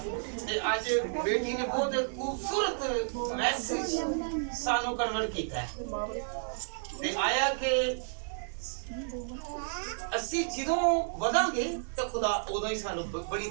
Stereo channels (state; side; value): silent; left; 57 dB below the other